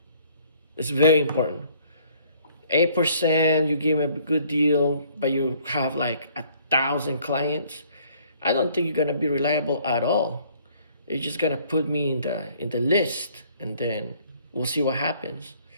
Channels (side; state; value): both; inverted; correlation -0.60